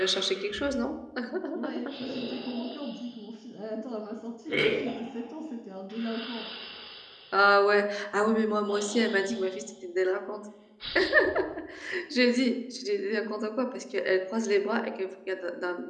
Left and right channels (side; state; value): both; identical; correlation 1.00